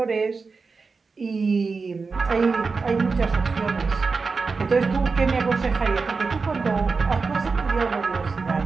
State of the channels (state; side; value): quieter; left; 4.5 dB